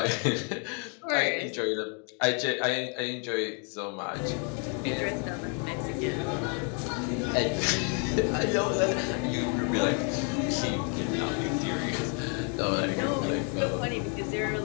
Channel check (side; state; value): right; quieter; 38.5 dB